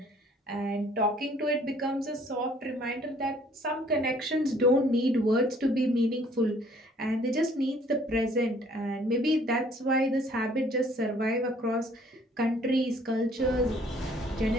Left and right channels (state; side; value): normal; both; correlation 0.59